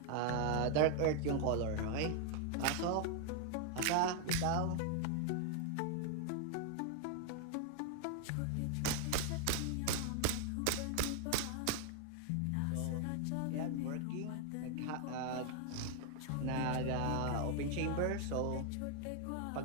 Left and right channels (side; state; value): both; different; correlation 0.00